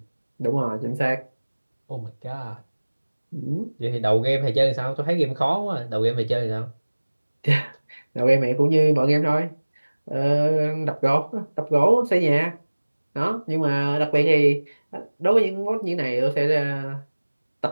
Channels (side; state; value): both; inverted; correlation -1.00